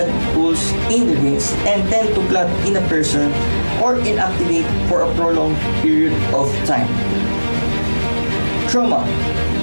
pools in the veins, and tend to clot in a person or inactivate for a prolonged period of time. Trauma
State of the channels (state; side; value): inverted; both; correlation -1.00